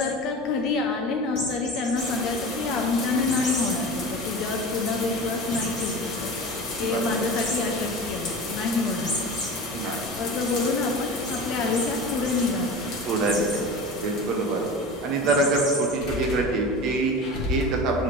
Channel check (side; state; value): both; normal; correlation 0.33